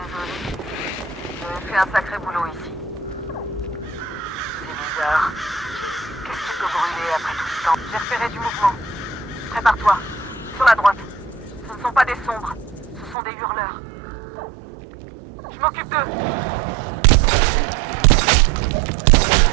J'ai fait un sacré boulot ici. C'est bizarre. Qu'est-ce qui peut brûler après tout ce temps? J'ai repéré du mouvement. Prépare-toi. Sur la droite. Ce ne sont pas des sombres. Ce sont des hurleurs. Je m'occupe d'eux.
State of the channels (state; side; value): drops out; left; at 13.2 s